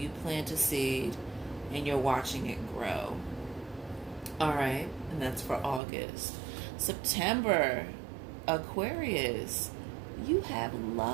plant a seed and you're watching it grow. All right, and that's for August. September, Aquarius, you have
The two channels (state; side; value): drops out; left; at 5.8 s